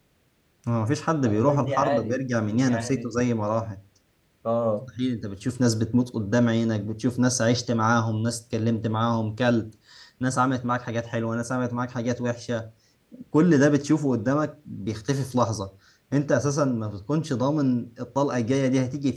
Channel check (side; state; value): both; identical; correlation 1.00